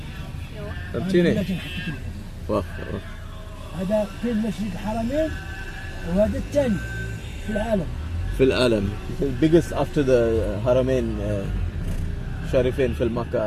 فهمتيني. واخا هذا في مسجد الحرمين وهذا الثاني في العالم. biggest after the حرمين شريفين في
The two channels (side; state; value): both; identical; correlation 1.00